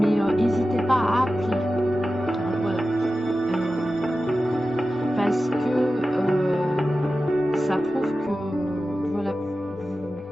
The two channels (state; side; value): normal; both; correlation 0.94